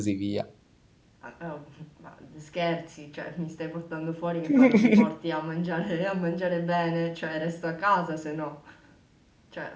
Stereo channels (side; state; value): both; identical; correlation 1.00